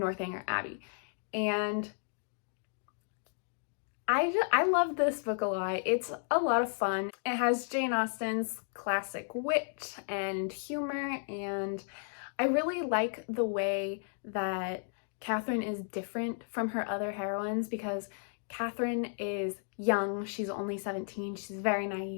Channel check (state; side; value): silent; right; digital silence